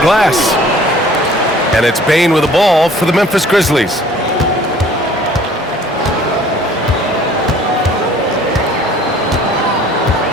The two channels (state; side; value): normal; both; correlation 0.52